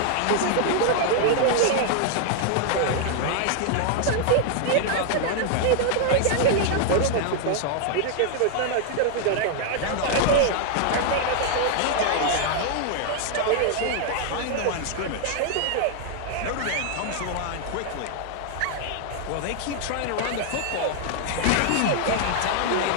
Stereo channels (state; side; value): different; both; correlation 0.00